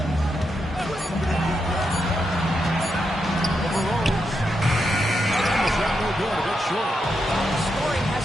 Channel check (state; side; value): normal; both; correlation 0.84